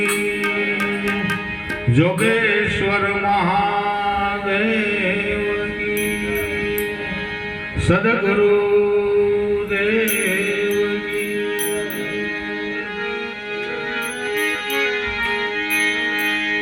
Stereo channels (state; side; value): identical; both; correlation 1.00